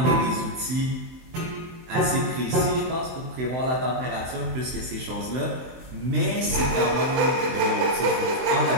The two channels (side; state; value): left; late; 23 ms